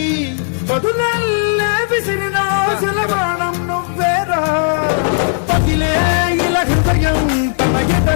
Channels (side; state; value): right; silent; digital silence